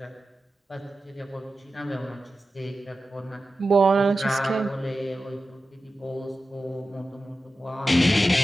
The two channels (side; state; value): both; normal; correlation 0.93